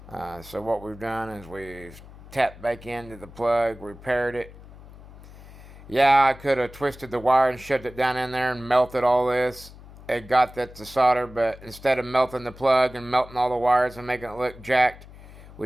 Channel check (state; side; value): noise; left; hum, 19 dB below the sound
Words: So what we've done is we've tapped back into the plug, repaired it. Yeah, I could have twisted the wire and shoved it down in there and melted all this. It got that to solder, but instead of melting the plug and melting all the wires and making it look jacked,